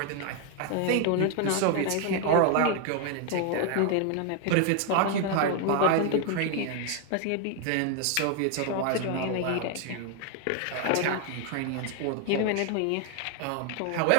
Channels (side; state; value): both; different; correlation 0.01